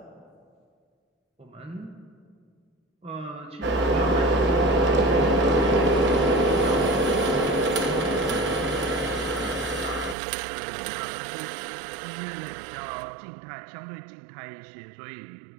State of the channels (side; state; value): left; drops out; at 10.2 s